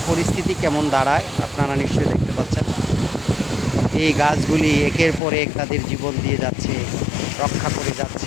পরিস্থিতি কেমন দাঁড়ায় আপনারা নিশ্চয়ই দেখতে পাচ্ছেন। এই গাছগুলি একের পর এক তাদের জীবন দিয়ে যাচ্ছে, রক্ষা করে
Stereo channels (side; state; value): right; drops out; at 5.2 s